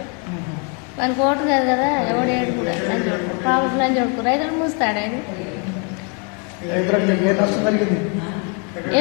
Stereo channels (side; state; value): right; quieter; 35.3 dB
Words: మనకు ఓటు కాదు కదా ఎవడు ఏడు కూడా లంచ్ కొడుకు కాబట్టి లంచ్ కొడుకు రైతులు మూస్తాడు ఆయన